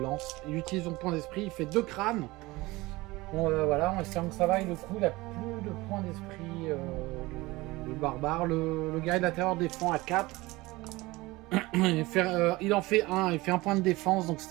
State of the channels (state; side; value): quieter; left; 20.8 dB